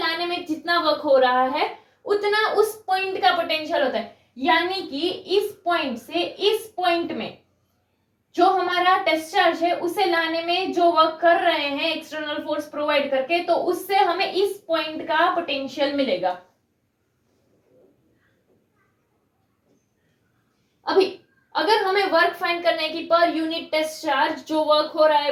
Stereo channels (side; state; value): both; identical; correlation 1.00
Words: में जितना वर्क हो रहा है उतना उस पॉइंट का पोटेंशियल होता है। यानी कि इस पॉइंट से इस पॉइंट में जो हमारा टेस्ट चार्ज है उसे लाने में जो वर्क कर रहे हैं एक्सटर्नल फोर्स प्रोवाइड करके तो उससे हमें इस पॉइंट का पोटेंशियल मिलेगा। अभी अगर हमें वर्क फाइंड करना है कि पर यूनिट टेस्ट चार्ज जो वर्क हो रहा